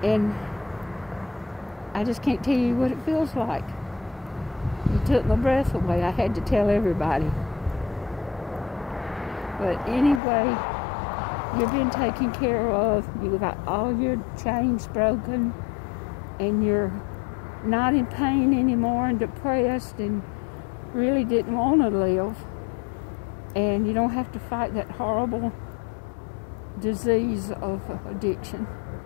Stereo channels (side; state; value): right; drops out; at 10.2 s